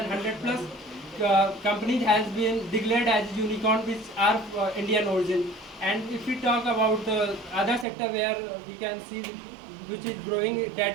100 plus companies has been declared as unicorn which are Indian origin. And if we talk about the other sector where we can see which is growing, that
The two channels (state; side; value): drops out; left; at 7.9 s